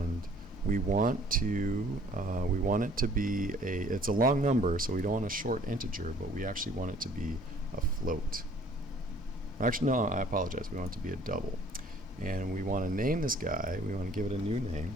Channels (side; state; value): both; normal; correlation 0.55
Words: we want it to be it's a long number, so we don't want a short integer, but we actually want it to be a float. Actually, no, I apologize. We want it to be a double. And we want to name this guy. We want to give it a new name.